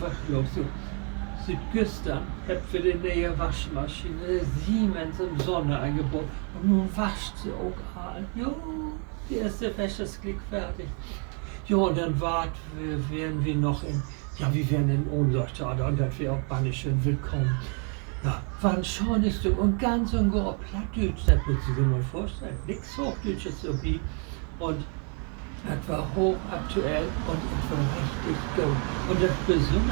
los? So, Südgüstern hat für die neue Waschmaschine Siemens im Sonne eingebaut. Und nun wascht sie auch all. Jo, die erste Wäsche ist gleich fertig. Jo, und dann wären wir noch wir wären in Ohnsorgstade und das wäre auch bannischön willkommen. Ja, war ein schönes Stück und ganz und gar Plattdeutsch, das würdest du dir mal vorstellen. Nichts Hochdeutsches irgendwie. Und das war hochaktuell und es war richtig gut. Und das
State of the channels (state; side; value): quieter; left; 39.6 dB